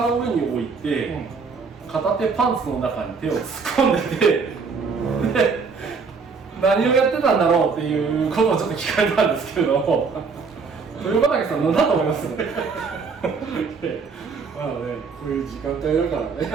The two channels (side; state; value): left; quieter; 5.0 dB